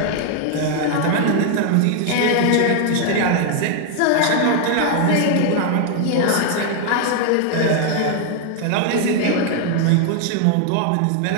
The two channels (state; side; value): different; both; correlation 0.00